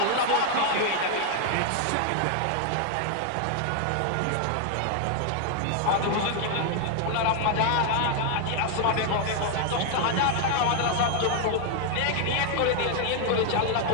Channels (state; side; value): different; both; correlation 0.00